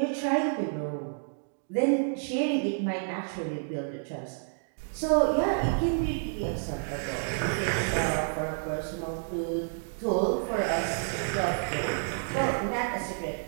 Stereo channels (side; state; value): left; silent; digital silence